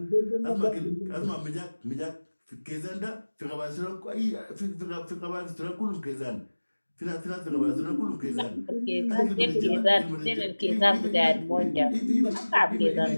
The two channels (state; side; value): inverted; both; correlation -1.00